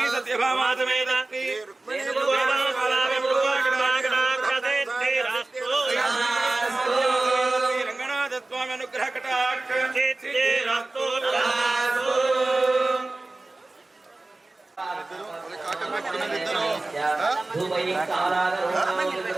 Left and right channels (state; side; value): quieter; left; 3.0 dB